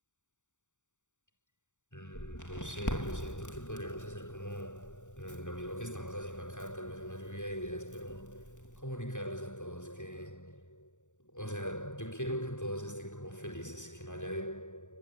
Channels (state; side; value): late; right; 0.85 ms